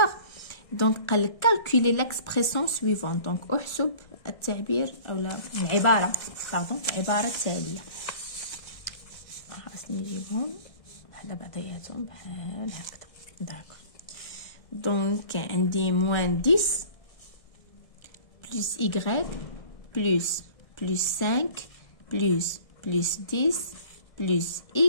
دونك قال لك calculer l'expression suivante. دونك احسب التعبير اولا العباره التاليه. خاصني نجيبهم وحده بعضياتهم بحال هكذا. داكور. دونك عندي موان 10 بلس y بلس 5 بلس 10 بلس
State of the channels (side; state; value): right; late; 1.6 ms